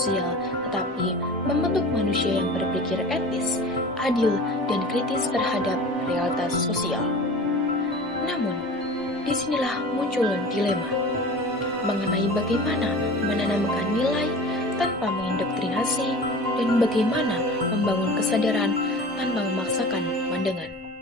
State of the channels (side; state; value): both; normal; correlation 0.38